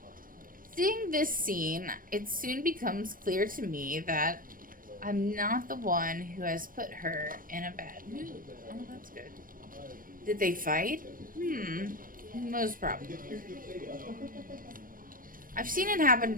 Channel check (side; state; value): left; late; 0.41 ms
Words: Seeing this scene, it soon becomes clear to me that I'm not the one who has put her in a bad mood. Oh, that's good. Did they fight? Most probably. I've seen it happen